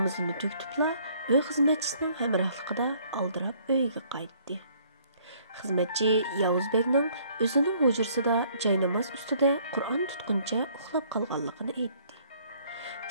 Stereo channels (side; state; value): both; inverted; correlation -0.61